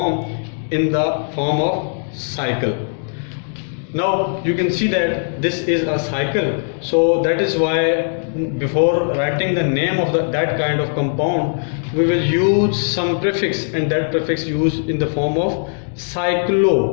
in the form of cycle. Now you can see that this is a cycle, so that is why before writing the name of that kind of compound, we will use some prefix, and that prefix used in the form of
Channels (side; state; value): right; silent; 66 dB below the other